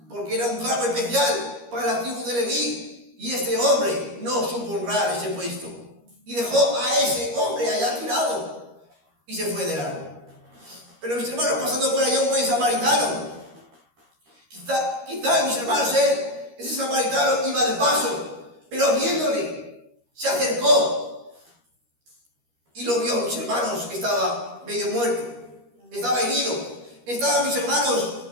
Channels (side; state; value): left; late; 13 ms